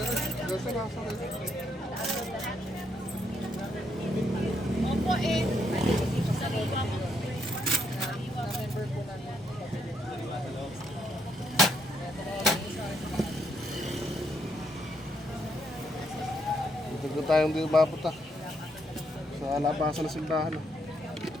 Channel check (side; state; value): both; normal; correlation 0.75